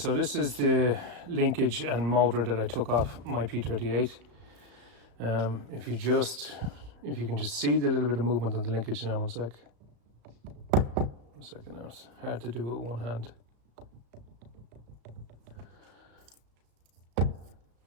this is the linkage and motor that I took off my P38. If you can just see the little bit of movement on the linkage now. One second now. It's hard to do with one hand.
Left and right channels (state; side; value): late; left; 34 ms